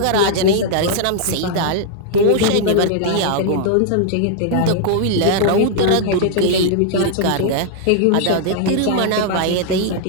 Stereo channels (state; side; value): different; both; correlation 0.00